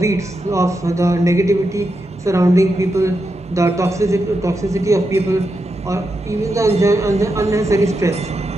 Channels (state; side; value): normal; both; correlation 0.86